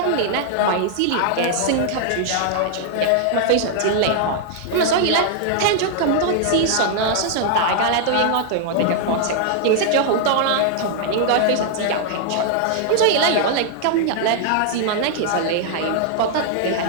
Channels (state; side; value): different; both; correlation -0.01